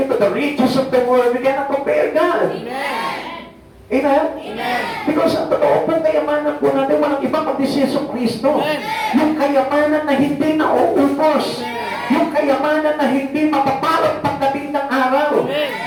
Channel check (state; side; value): identical; both; correlation 1.00